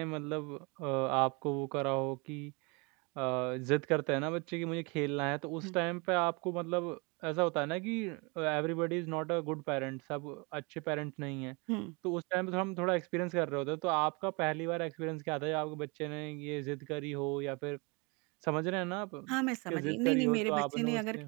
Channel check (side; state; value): left; quieter; 29.7 dB